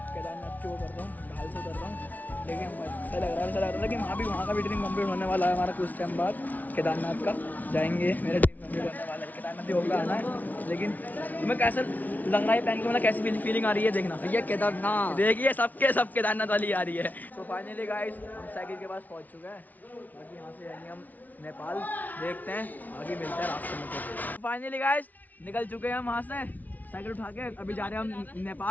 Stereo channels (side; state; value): right; late; 0.078 ms